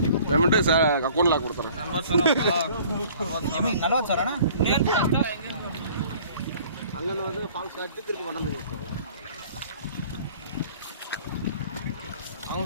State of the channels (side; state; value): both; inverted; correlation -0.52